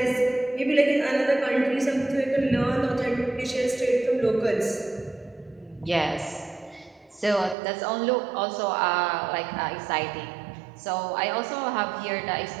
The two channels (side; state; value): left; drops out; at 7.6 s